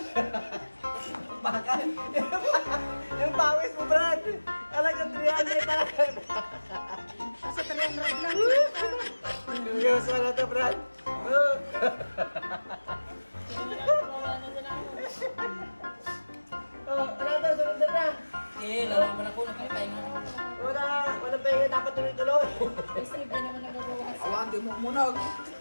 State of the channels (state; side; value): inverted; both; correlation -1.00